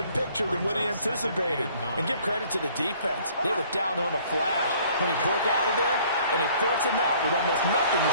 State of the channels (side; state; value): both; inverted; correlation -0.57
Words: picture than what he anticipated. And give credit to the defense. They were down on the flash when he broke out of there, and they forced him out with almost nothing to